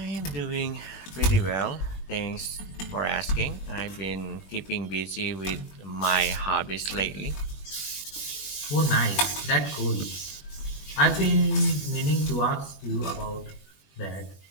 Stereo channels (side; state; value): right; late; 21 ms